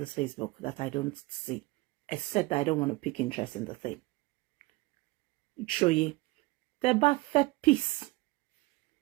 Facebook that I don't see, except that I don't want to pick interest in the thing. Show you, the bad peace.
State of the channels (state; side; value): quieter; left; 21.8 dB